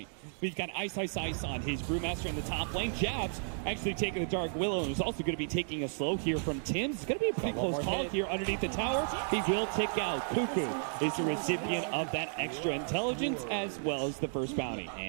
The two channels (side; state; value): left; silent; digital silence